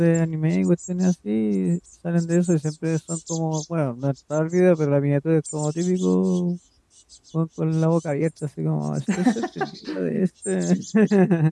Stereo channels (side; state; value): both; identical; correlation 1.00